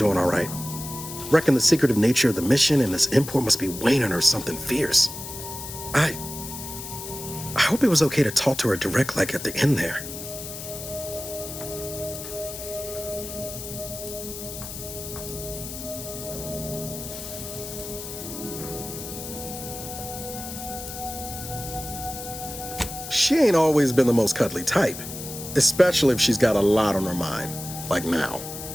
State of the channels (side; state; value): left; noise; hiss, 10 dB below the sound